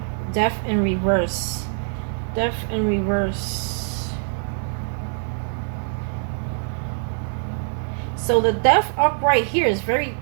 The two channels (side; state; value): left; silent; 56 dB below the other